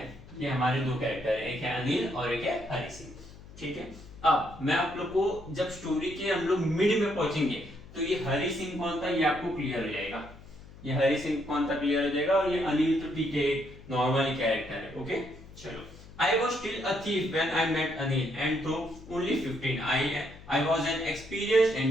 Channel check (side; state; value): left; noise; hum, 19 dB below the sound